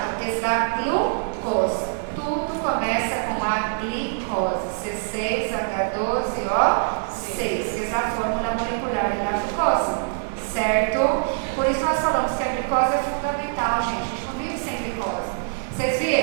que es la glucosa. Tudo começa com a glicose, C6H12O6, que é a fórmula molecular da glucose, certo? Por isso nós falamos que a glicose é fundamental, gente. A gente não vive sem glicose. Vocês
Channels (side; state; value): left; silent; 56 dB below the other